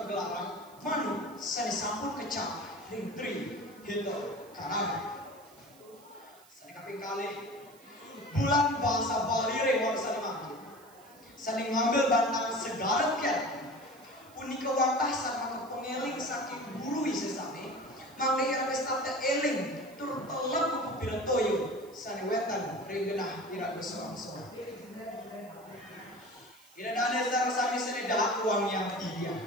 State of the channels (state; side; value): noise; right; hiss, 25 dB below the sound